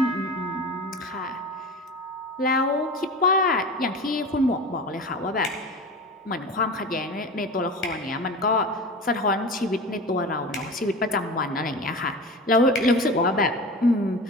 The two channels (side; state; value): both; normal; correlation 0.32